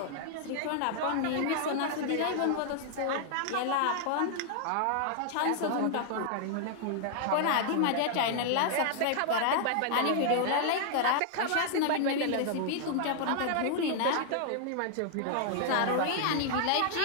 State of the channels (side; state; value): both; different; correlation -0.01